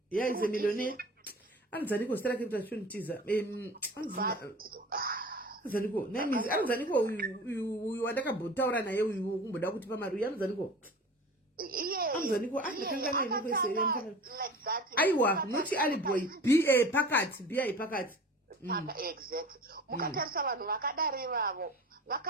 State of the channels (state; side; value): normal; both; correlation 0.39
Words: Yeah, he's a millionaire. Anzaniko starake mtashunitiza Anzaniko name Anzaniko uyu wandakabotaura naye uyu kumboda kuti pamari Anzaniko Anzaniko akanga naye kwese like that. Aiwa not Ali boy BA pakati exactly. Mukatarisa vanhu vakadare vavo